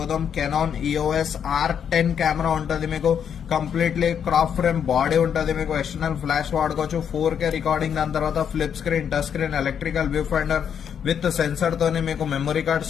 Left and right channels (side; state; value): right; quieter; 8.1 dB